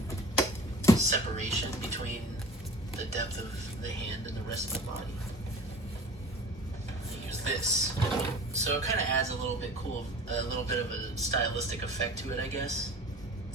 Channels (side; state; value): both; normal; correlation 0.41